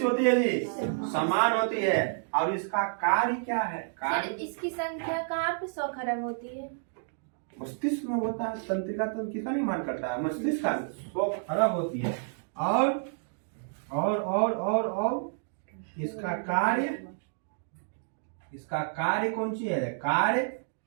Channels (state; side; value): silent; left; digital silence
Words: होती है जी? समान होती है। और इसका कार्य क्या है? कार्य इसकी संख्या कहाँ पे 100 खरब होती है? मस्तिष्क में होता है। तंत्रिका तंत्र किसका निर्माण करता है? मस्तिष्क का। 100 खरब होती है। और इसका कार्य, इसका कार्य कौन सी है? कार्य